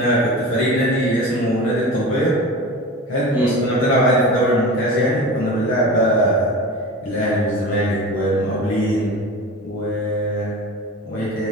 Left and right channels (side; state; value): both; normal; correlation 0.32